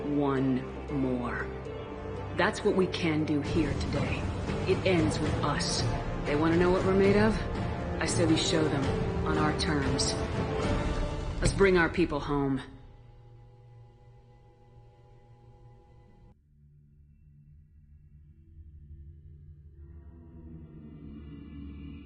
one more. That's what we can do here today. It ends with us. They want to know what we're made of? I say we show them, on our terms. Let's bring our people home.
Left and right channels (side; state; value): both; identical; correlation 1.00